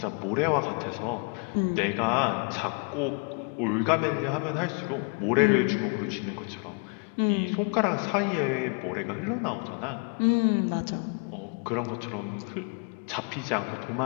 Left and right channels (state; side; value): quieter; right; 36.0 dB